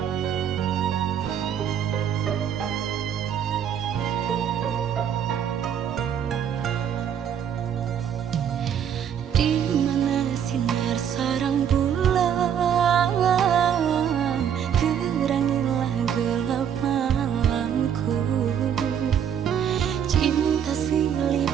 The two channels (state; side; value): quieter; left; 8.7 dB